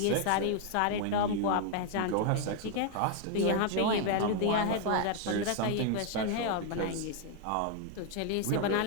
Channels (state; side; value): different; both; correlation 0.00